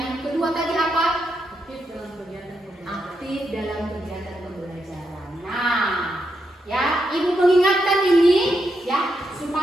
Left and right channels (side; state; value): both; normal; correlation 0.83